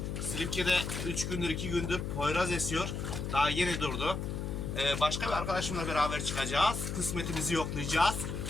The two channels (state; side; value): noise; left; hum, 4 dB below the sound